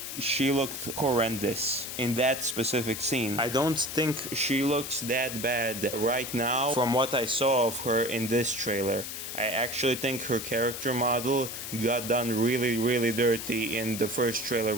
she looked horrendous in that specific scene. I don't think she looks that bad right now from what I saw of her in this trailer. I actually think her character model got done really dirty in the first trailer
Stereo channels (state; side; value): noise; left; hiss, 7 dB below the sound